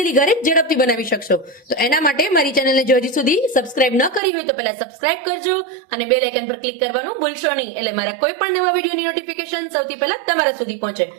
ઘરે ઝડપથી બનાવી શકશો. તો એના માટે મારી ચેનલને જો હજી સુધી સબસ્ક્રાઇબ ન કરી હોય તો પહેલા સબસ્ક્રાઇબ કરજો અને બેલ આઇકન પર ક્લિક કરવાનું ભૂલશો નહીં, એટલે મારા કોઈ પણ નવા વિડીયોની નોટિફિકેશન સૌથી પહેલા તમારા સુધી પહોંચે.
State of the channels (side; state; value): left; drops out; at 4.2 s